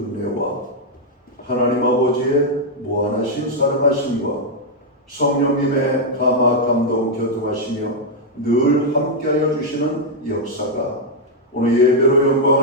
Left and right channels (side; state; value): both; normal; correlation -0.02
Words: 하나님 아버지의 무한하신 사랑하심과 성령님의 감화 감동 교통하시며 늘 함께하여 주시는 역사가 오늘 예배로